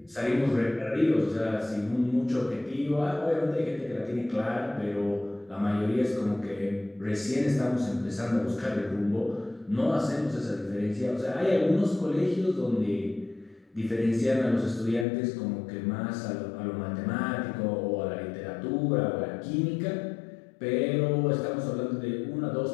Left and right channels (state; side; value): drops out; right; at 15.1 s